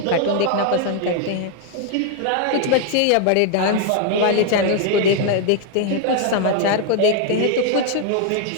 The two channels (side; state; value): both; different; correlation 0.00